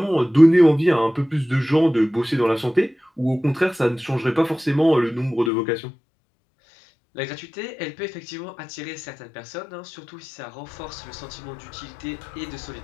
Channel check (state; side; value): drops out; right; at 5.5 s